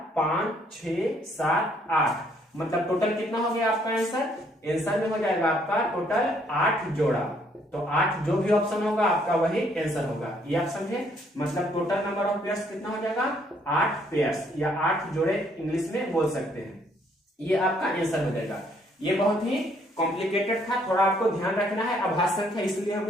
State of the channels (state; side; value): normal; both; correlation 0.67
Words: 5, 6, 7, 8, मतलब टोटल कितना हो गया आपका आंसर में हो जाएगा आपका टोटल 8 जोड़ा। तो 8 जो भी ऑप्शन होगा आपका वही आंसर होगा, ये आप समझे। मतलब टोटल नंबर ऑफ पेयर्स कितना हो जाएगा 8 पेयर्स, या 8 जोड़े इंग्लिश में बोल सकते हैं, ये आपका आंसर हो जाएगा। ये बहुत ही कॉम्प्लिकेटेड था, थोड़ा आपको ध्यान रखना है। अभाज्य संख्या इसलिए